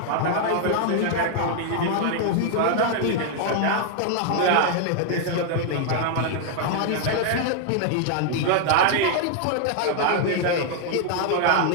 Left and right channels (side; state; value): both; different; correlation 0.00